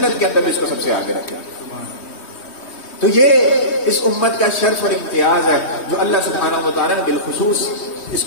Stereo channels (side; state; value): right; late; 3.1 ms